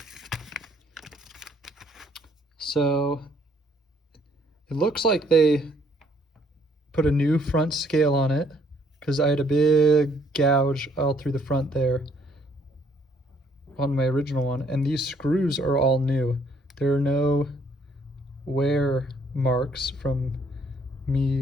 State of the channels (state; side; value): normal; both; correlation 0.66